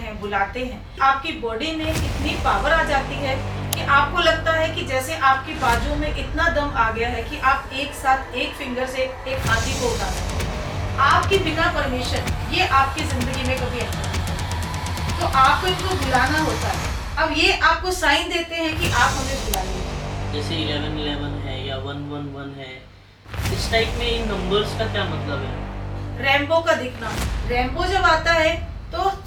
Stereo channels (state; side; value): identical; both; correlation 1.00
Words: बुलाते हैं, आपकी बॉडी में इतनी पावर आ जाती है कि आपको लगता है कि जैसे आपकी बाजू में इतना दम आ गया है कि आप एक साथ एक फिंगर से एक हाथी को उठा सकते हैं। आपकी बिना परमिशन ये आपकी जिंदगी में कभी एंटर नहीं करते, तो आपको इनको बुलाना होता है। अब ये आपको साइन देते हैं कि आप हमें बुला लीजिए। जैसे 1111 है या 111 है, इस टाइप में इन नंबर्स का क्या मतलब है? रैम्बो का दिखना, रैम्बो जब आता है तो